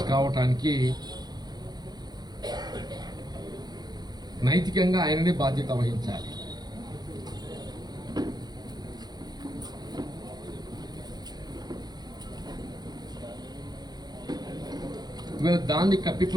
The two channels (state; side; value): late; left; 0.20 ms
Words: కావటానికి నైతికంగా ఆయననే బాధ్యత వహించాలి. దాన్ని